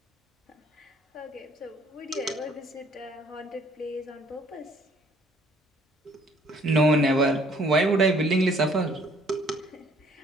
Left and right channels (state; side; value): normal; both; correlation 0.60